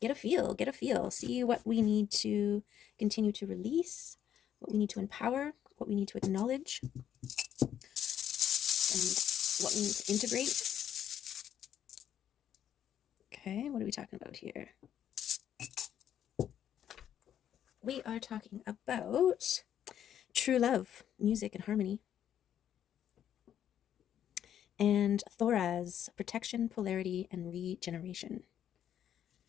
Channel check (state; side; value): quieter; right; 10.0 dB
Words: get a feel, see what we need to continue to release, what we need to empower, what we need to acknowledge, and what we need to integrate. Okay, what are we talking about here? We are talking about true love, music, and harmony. And Thoraz, protection, polarity, and regeneration.